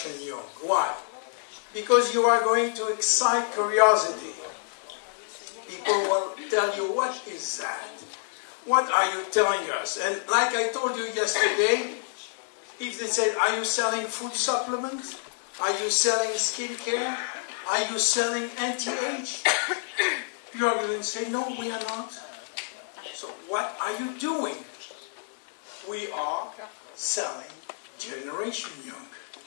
Young. Why? Because you are going to excite curiosity. People will tell you, what is that? What are you telling us? And like I told you yesterday, if they said, are you selling food supplements? Are you selling skincare? Are you selling anti-age? You are going to say, no, we are not. So what are you doing? We are selling Generation Young.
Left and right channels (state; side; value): silent; right; 58 dB below the other